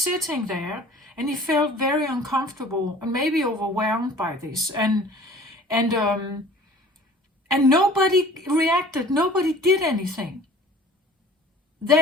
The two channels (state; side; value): normal; both; correlation 0.47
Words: there and he felt very uncomfortable and maybe overwhelmed by this. And nobody reacted. Nobody did anything.